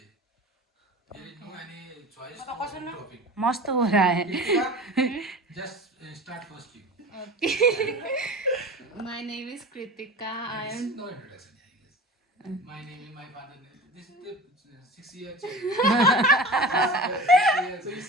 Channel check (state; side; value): normal; both; correlation 0.35